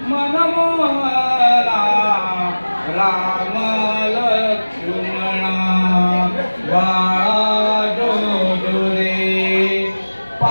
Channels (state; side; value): inverted; both; correlation -1.00